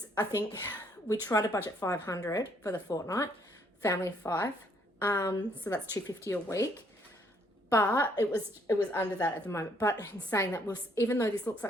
I think, we try to budget $500 for the fortnight, family of 5. So that's $250 a week. But it was under that at the moment. But in saying that, even though this looks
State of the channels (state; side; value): normal; both; correlation 0.67